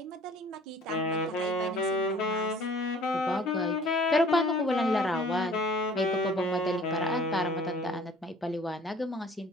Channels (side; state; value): both; normal; correlation 0.51